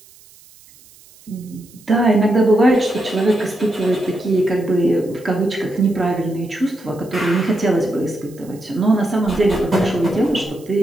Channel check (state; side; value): noise; right; hiss, 25 dB below the sound